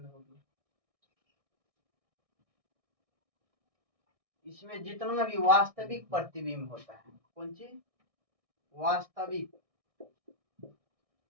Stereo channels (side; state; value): left; late; 1.6 ms